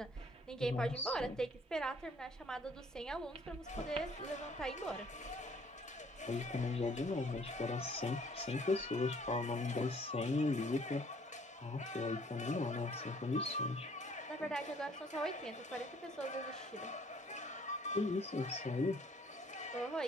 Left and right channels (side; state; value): both; normal; correlation 0.60